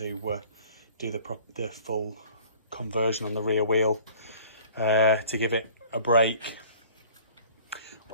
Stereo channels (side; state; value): both; inverted; correlation -0.49